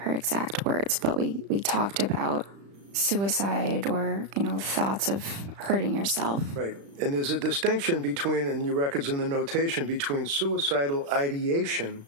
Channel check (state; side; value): late; left; 35 ms